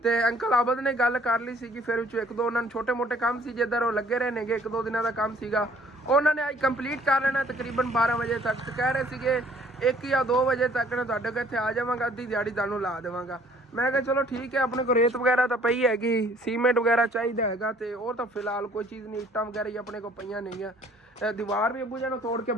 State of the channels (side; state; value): both; normal; correlation 0.57